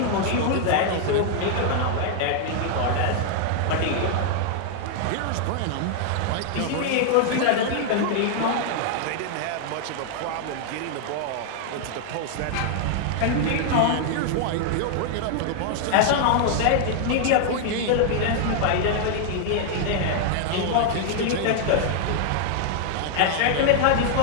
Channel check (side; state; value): both; different; correlation 0.00